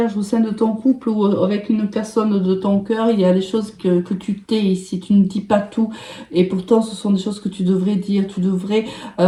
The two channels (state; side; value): identical; both; correlation 1.00